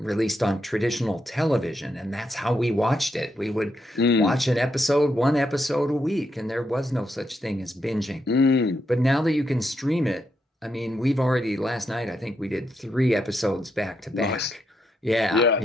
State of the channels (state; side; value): normal; both; correlation 0.81